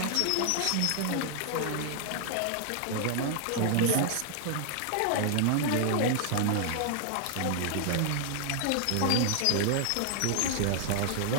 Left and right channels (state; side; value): different; both; correlation 0.00